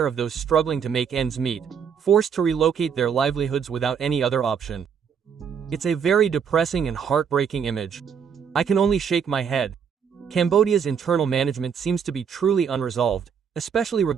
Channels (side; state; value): left; quieter; 7.1 dB